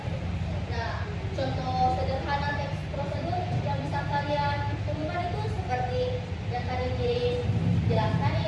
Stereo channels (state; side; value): identical; both; correlation 1.00